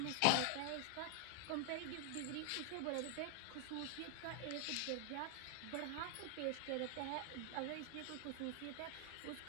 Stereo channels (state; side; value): different; both; correlation 0.00